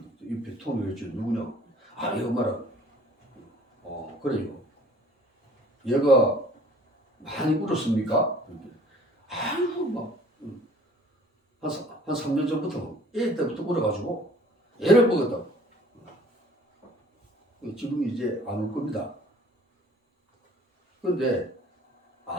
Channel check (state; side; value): normal; both; correlation 0.52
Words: 옆에 통을 했죠. 누구냐고. 얘 엄마라고. 그래요. 얘가 많이 울었습니까? 아이고 한 3년 전부터 애 때부터 울어가지고 애를 먹었다고. 지금 이제 안 울 겁니다. 그런데